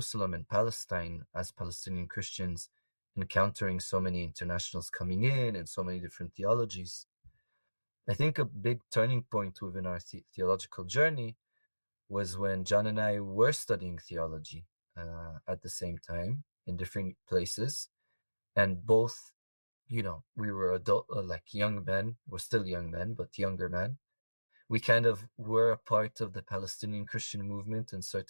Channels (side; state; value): both; inverted; correlation -1.00